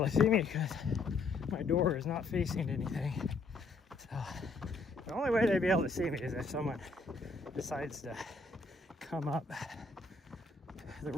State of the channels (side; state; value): right; quieter; 3.6 dB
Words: to see me because my door is not facing anything. So the only way they'd be able to see me is if someone decides to come up the